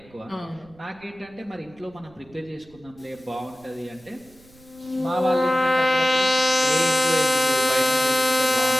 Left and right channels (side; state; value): right; noise; rumble, 27 dB below the sound